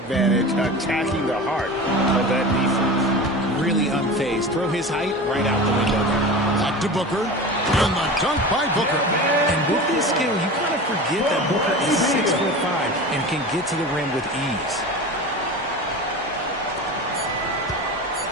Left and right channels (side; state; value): both; normal; correlation 0.31